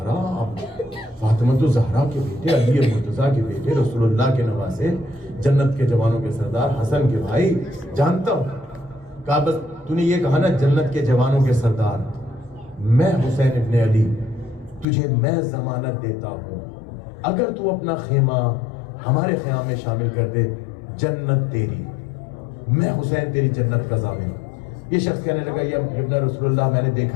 فاطمہ زہرا کے بیٹے، علی مرتضیٰ کے بیٹے، رسول اللہ کے نواسے، جنت کے جوانوں کے سردار، حسن کے بھائی، جانتا ہوں. کہا بس تو نے یہ کہا نا جنت کے جوانوں کے سردار، میں حسین ابن علی تجھے میں ضمانت دیتا ہوں اگر تو اپنا خیمہ ہمارے خیام میں شامل کر دے جنت تیری، میں حسین تیری جنت کا ضامن. یہ شخص کہنے لگا یا ابن رسول اللہ میں نے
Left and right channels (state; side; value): drops out; right; at 14.9 s